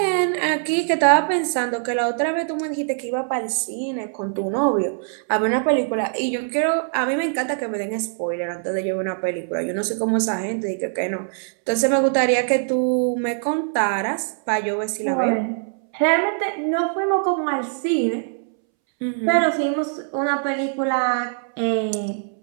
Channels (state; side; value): silent; left; 64 dB below the other